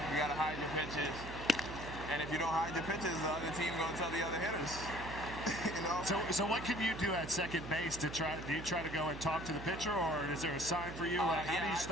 you got to hide your pitches. And if you don't hide your pitches, the other team going to tell the other hitters. You know? So what can you do at second base to try? Do you try to go and talk to the pitcher, or is there a sign for you? How do you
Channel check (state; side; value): noise; right; hum, 11 dB below the sound